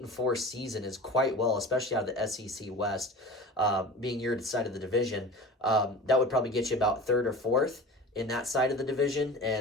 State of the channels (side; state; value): both; normal; correlation 0.36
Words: season is quite well, especially out of the SEC West, being your side of the division. That would probably get you about 3rd or 4th in that side of the division,